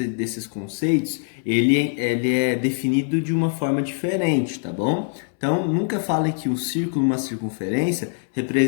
conceitos, ele é definido de uma forma diferente, tá bom? Então, nunca fale que um círculo e uma circunferência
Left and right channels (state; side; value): silent; right; 64 dB below the other